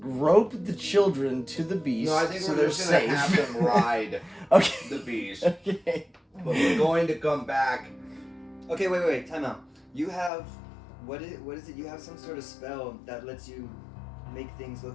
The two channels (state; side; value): drops out; right; at 10.3 s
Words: rope the children to the beast No, I think so we're they're just gonna safe. have them ride Okay. the beast. Okay. But we're going to come back Okay, wait, time out. You have, what is it? You have some sort of spell that lets you make things